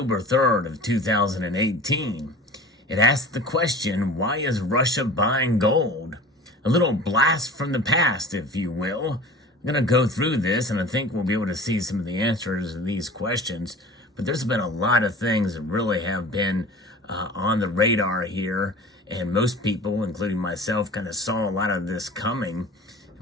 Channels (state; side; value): normal; both; correlation 0.39